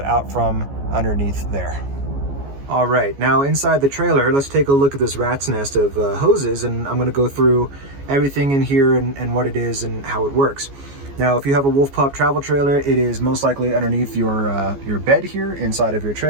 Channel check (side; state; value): left; late; 14 ms